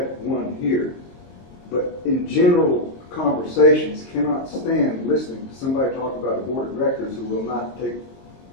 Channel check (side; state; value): right; late; 23 ms